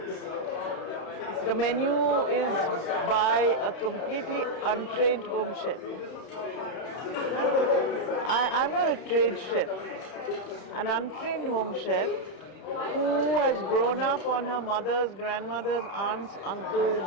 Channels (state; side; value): late; right; 32 ms